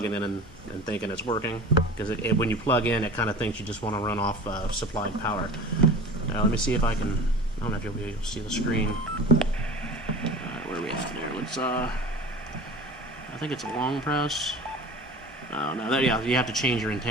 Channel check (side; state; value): both; normal; correlation 0.38